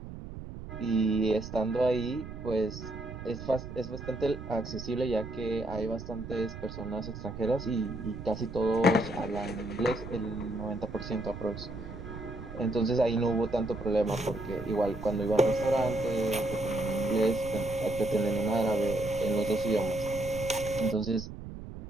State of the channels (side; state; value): right; noise; rumble, 10 dB below the sound